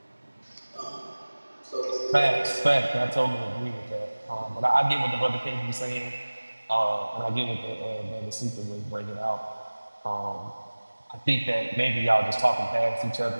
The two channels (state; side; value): inverted; both; correlation -1.00